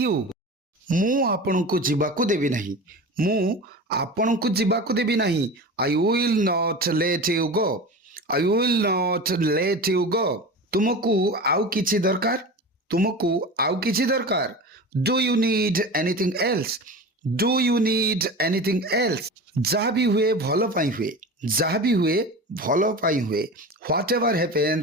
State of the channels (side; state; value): both; normal; correlation 0.31